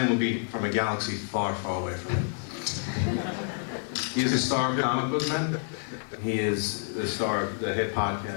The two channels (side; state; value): right; silent; 57 dB below the other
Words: would be from a galaxy far, far away from it. He is a star of comic book men. He is the star of the hit